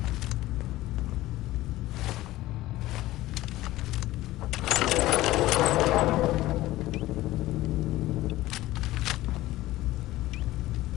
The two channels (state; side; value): quieter; right; 16.7 dB